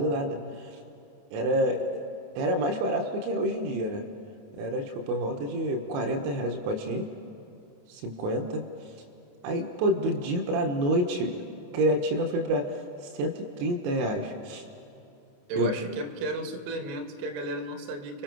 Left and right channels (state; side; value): late; left; 28 ms